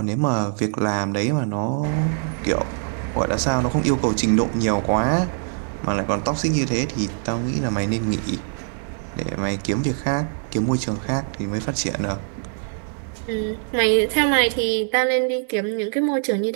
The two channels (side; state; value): left; silent; 63 dB below the other